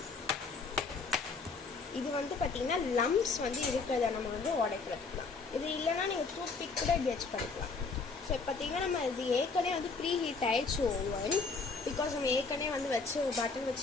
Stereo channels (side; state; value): right; quieter; 4.4 dB